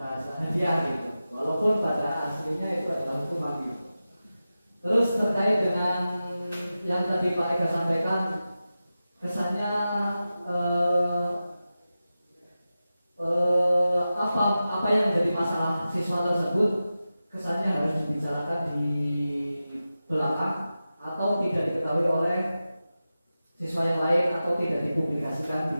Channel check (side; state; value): both; inverted; correlation -0.93